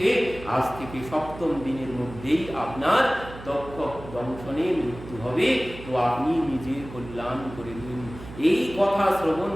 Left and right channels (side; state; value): right; noise; hum, 14 dB below the sound